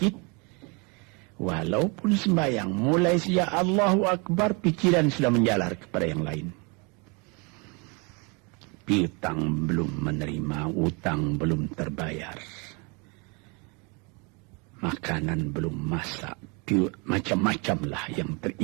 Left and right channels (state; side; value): quieter; left; 31.2 dB